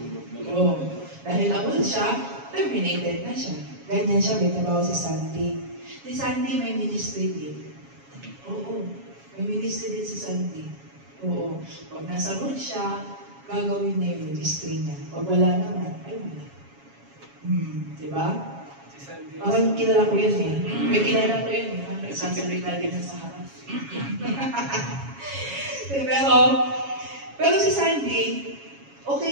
Dahil awol siya, terminated na siya. Ganyan siya, may trabaho si Sandy. Si Sandy may ministry din. May ministry din si Sandy. Pag nasa road siya, gagawin niya yung ministry niya. Pag wala naman, ay wala. Diba? Parang kilala ko yun eh. May kilala ko yun eh. Nagsasalita din na sa harap. Pero si Sandy,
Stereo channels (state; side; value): late; left; 7.2 ms